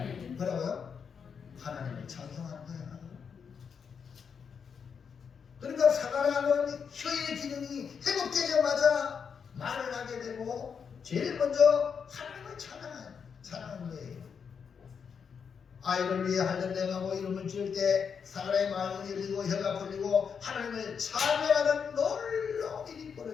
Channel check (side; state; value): right; quieter; 6.5 dB